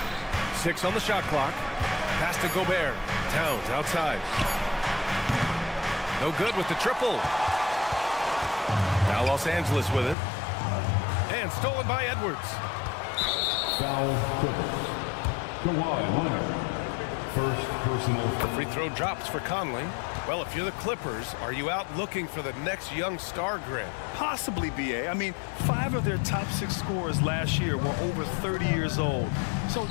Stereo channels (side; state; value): right; drops out; at 10.2 s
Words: 6 on the shot clock. Pass to Gobert. Towns outside. No good with the triple. Now Los Angeles with it. And stolen by Edwards. Foul Clippers. Kawhi Leonard. First personal The free throw drops for Conley. Well, if you're the Clippers, are you out looking for the next young star, Grant? Possibly, BA. I mean, 5 of their top 6 scorers last year were over 30 years old. So